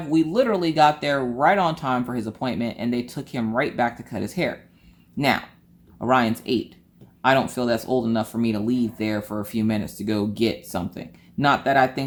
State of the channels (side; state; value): both; identical; correlation 1.00